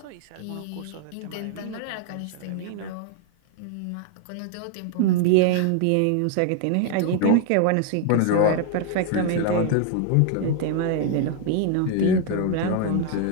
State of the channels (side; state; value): both; different; correlation 0.00